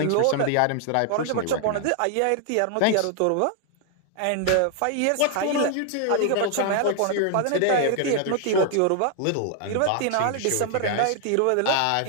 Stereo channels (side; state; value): both; different; correlation 0.00